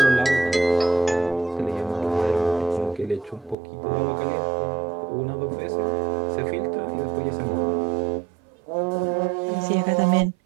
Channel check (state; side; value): drops out; left; at 3.6 s